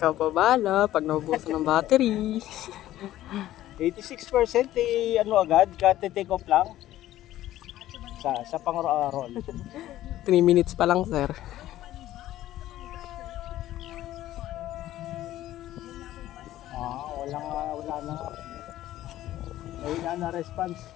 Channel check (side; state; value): right; quieter; 14.0 dB